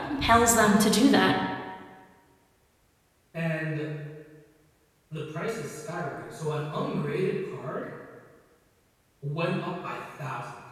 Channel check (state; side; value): identical; both; correlation 1.00